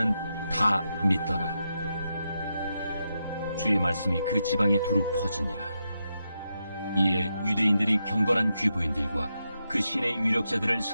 다 믿더라. 주의 말씀이 그 지방에 두루 퍼지니라. 이에 유대인들이 경건한 귀부인들과 그 신의 유력자들을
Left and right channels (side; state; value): both; inverted; correlation -0.85